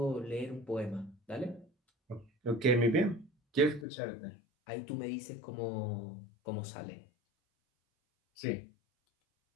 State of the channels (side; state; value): right; drops out; at 3.9 s